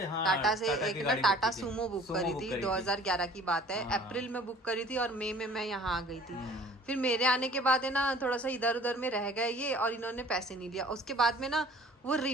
हाँ टाटा से टाटा एक की ना गाड़ी टाटा बुक की थी। सूमो बुक सूमो करी बुक थी, करी थी। 2011 की बात है। हाँ। अप्रैल में बुक करी थी और मई में मैं यहाँ आ गई थी। फिर मेरे आने के बाद है ना थोड़ा सा इधर उधर में रह गए ये, और इन्होंने पैसे नहीं लिया। उसके बाद में ना वो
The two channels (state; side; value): normal; both; correlation 0.50